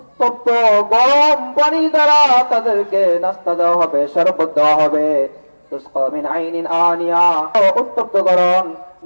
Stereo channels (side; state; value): both; inverted; correlation -1.00